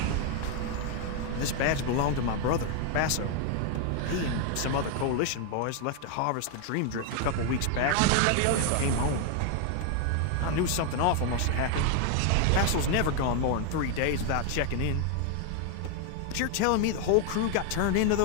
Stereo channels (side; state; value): both; different; correlation 0.00